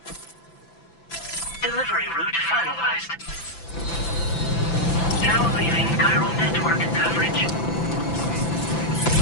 Delivery route finalized. Now leaving chiral network coverage.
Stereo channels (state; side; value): late; right; 5.9 ms